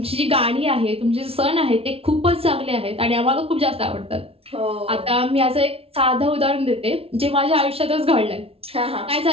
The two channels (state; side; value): late; left; 0.28 ms